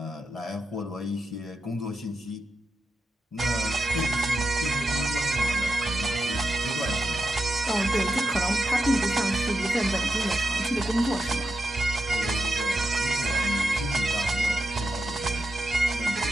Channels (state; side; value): normal; both; correlation 0.87